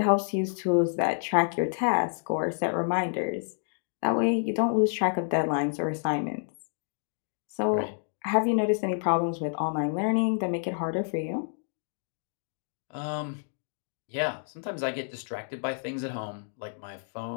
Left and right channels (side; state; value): right; silent; digital silence